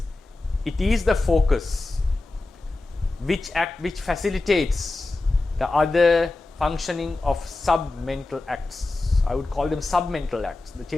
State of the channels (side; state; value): right; quieter; 3.1 dB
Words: it is the focus which facilitates the other functioning of sub-mental acts I would call them submental acts, the